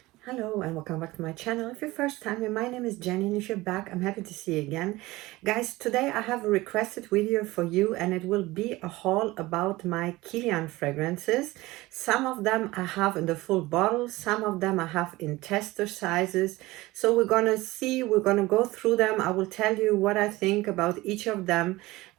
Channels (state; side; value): quieter; left; 19.5 dB